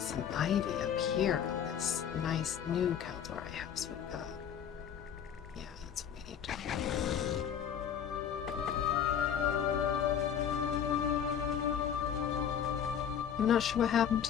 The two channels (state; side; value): quieter; right; 8.5 dB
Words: some ivy up here on this nice new Kaldorei house we've got. Yeah, that's what we need to do. I'm not sure what happened